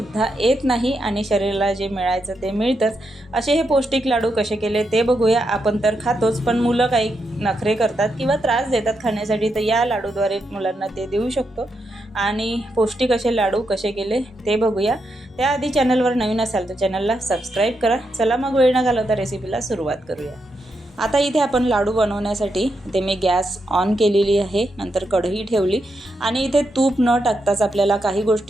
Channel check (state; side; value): normal; both; correlation 0.83